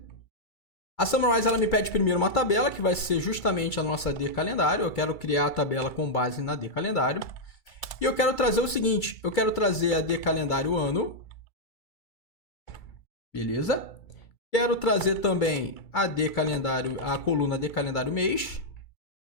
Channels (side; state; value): right; late; 2.3 ms